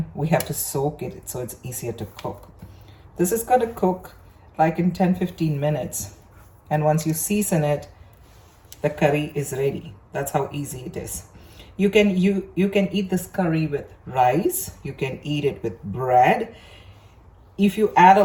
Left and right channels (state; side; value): identical; both; correlation 1.00